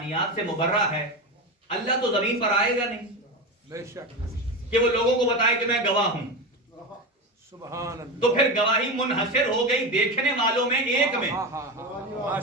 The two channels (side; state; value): both; normal; correlation 0.20